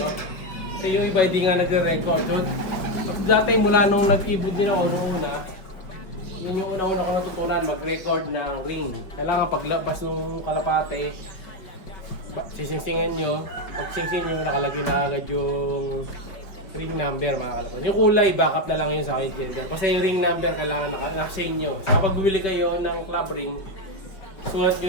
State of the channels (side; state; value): right; late; 5.3 ms